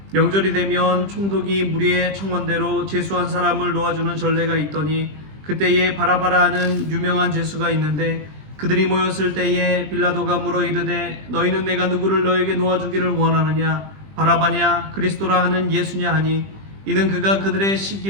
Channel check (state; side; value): late; left; 20 ms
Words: 명절이 되면 총독이 무리의 청원대로 죄수한 사람을 놓아주는 전례가 있더니 그때에 바라바라 하는 유명한 죄수가 있는데 그들이 모였을 때에 빌라도가 물어 이르되 너희는 내가 누구를 너에게 놓아주기를 원하느냐 바라바냐 그리스도라 하는 예수냐 하니 이는 그가 그들의